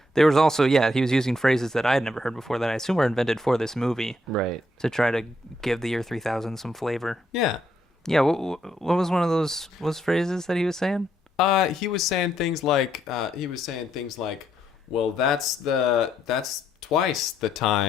there was also, he was using phrases that I had never heard before that I assume were invented for this movie. Right. To try to give the year 3000 some flavor. Yeah. Yeah, what was one of those phrases that he was saying? He was saying things like, well, that's twice the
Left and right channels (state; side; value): normal; both; correlation 0.75